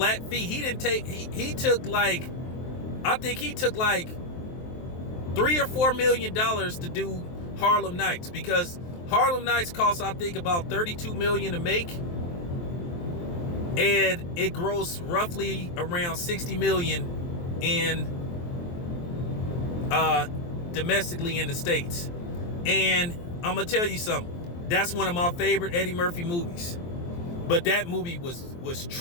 fee. He took like $3 or $4 million to do Harlem Nights, because Harlem Nights costs, I think, about $32 million to make, and it grossed roughly around $60 million domestically in the States. And I'm gonna tell you something. That's one of my favorite Eddie Murphy movies. But that movie was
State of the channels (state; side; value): late; right; 23 ms